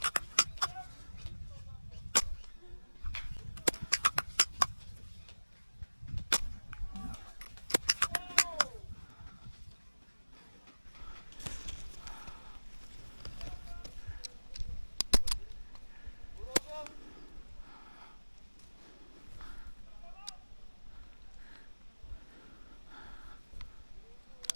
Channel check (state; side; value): inverted; both; correlation -1.00